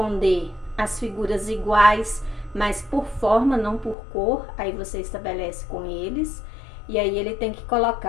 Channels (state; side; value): drops out; right; at 4.0 s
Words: às figuras iguais, mas por forma, não por cor, aí você estabelece com eles, e aí ele tem que